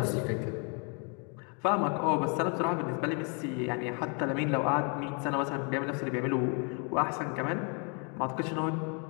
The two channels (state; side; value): quieter; right; 36.1 dB